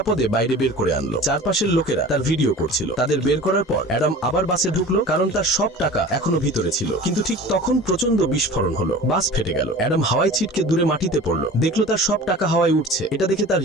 বাইরে বের করে আনলো। চারপাশের লোকেরা তার ভিডিও করছিল। তাদের বের করার পর অ্যাডাম আবার বাসে ঢুকলো, কারণ তার সব টাকা এখনো ভিতরে ছিল। কিন্তু ঠিক তখন প্রচন্ড বিস্ফোরণ হলো, বাস ফেটে গেল। অ্যাডাম হাওয়ায় ছিটকে দূরে মাটিতে পড়লো, দেখলো তার সব টাকা হাওয়ায় উঠছে। এটা দেখে তার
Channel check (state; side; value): normal; both; correlation 0.39